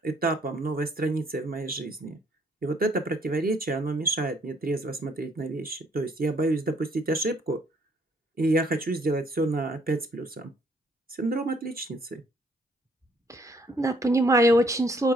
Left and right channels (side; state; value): both; normal; correlation 0.65